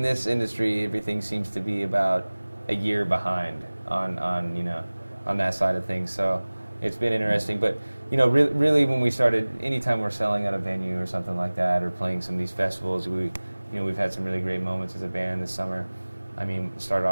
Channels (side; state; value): both; inverted; correlation -1.00